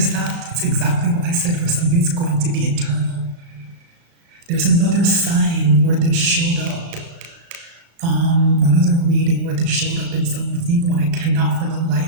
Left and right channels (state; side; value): late; left; 36 ms